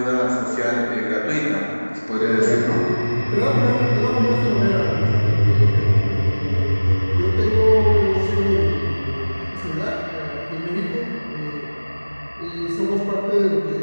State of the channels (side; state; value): both; inverted; correlation -1.00